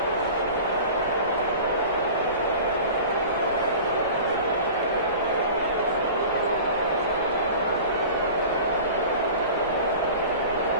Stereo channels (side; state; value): both; inverted; correlation -0.39